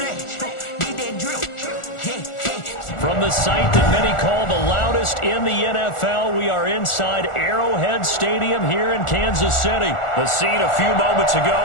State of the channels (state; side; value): late; right; 1.4 ms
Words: From the site that many call the loudest in the NFL, we are inside Arrowhead Stadium here in Kansas City. The scene a few moments ago,